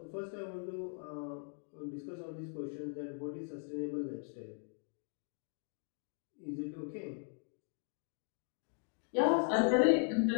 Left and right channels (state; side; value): silent; right; 52 dB below the other